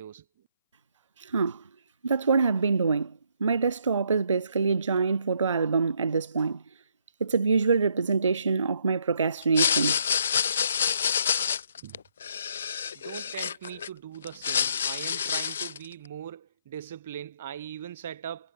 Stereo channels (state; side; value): inverted; both; correlation -0.71